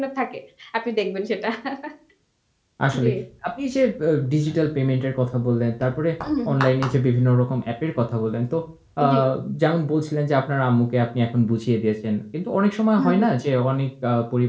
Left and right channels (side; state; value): both; identical; correlation 1.00